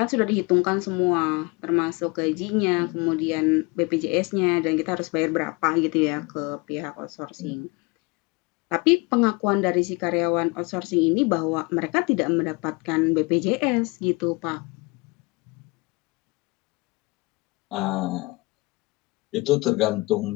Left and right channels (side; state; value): right; quieter; 26.2 dB